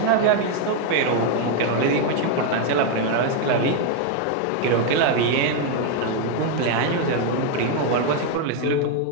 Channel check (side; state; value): both; different; correlation 0.01